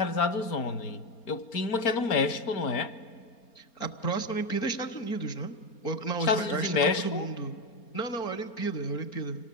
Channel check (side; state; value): right; late; 4.3 ms